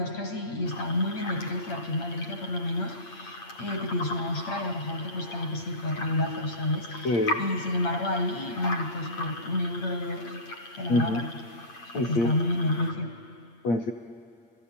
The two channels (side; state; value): right; late; 8.7 ms